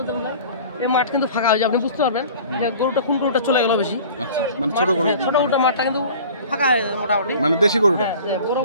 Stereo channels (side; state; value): both; inverted; correlation -0.44